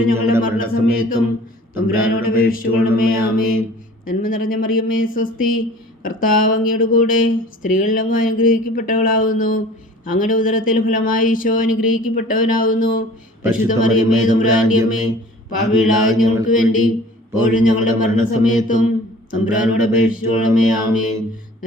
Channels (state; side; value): normal; both; correlation 0.47